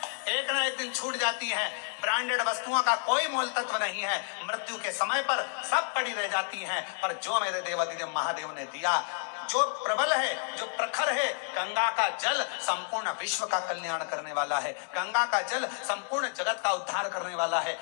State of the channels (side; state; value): right; silent; 57 dB below the other